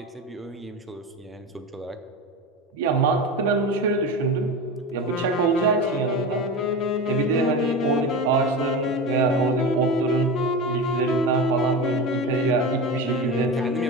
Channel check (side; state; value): both; normal; correlation 0.25